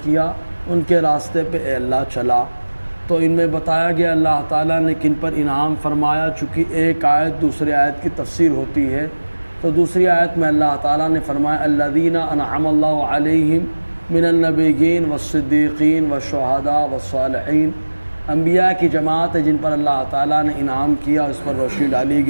کیا ان کے راستے پہ اے اللہ چلا۔ تو ان میں بتایا گیا اللہ تعالیٰ نے کن پر انعام فرمایا، چونکہ ایک آیت دوسری آیت کی تفسیر ہوتی ہے، تو دوسری آیت میں اللہ تعالیٰ نے فرمایا الذین انعم اللہ علیہم من النبیین والصدیقین والشہداء والصالحین، انبیاء کی جماعت ہے جن پر اللہ تعالیٰ نے انعام کیا، اس پر روشنی ڈالی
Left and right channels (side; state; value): both; inverted; correlation -1.00